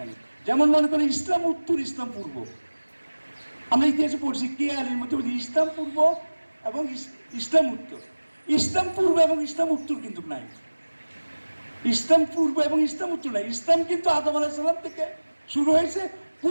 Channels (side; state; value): both; inverted; correlation -1.00